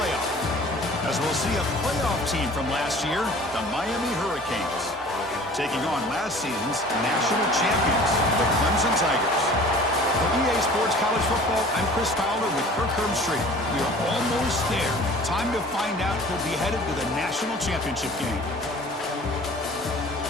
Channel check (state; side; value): normal; both; correlation 0.46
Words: As we'll see a playoff team from last year, the Miami Hurricanes, taking on last season's national champions, the Clemson Tigers. For EA Sports College Football, I'm Chris Fowler with Kirk Herbstreit. We are almost there. Time to find out who'll be headed to the national championship game.